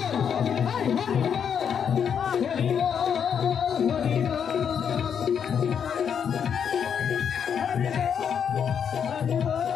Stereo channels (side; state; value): right; quieter; 7.7 dB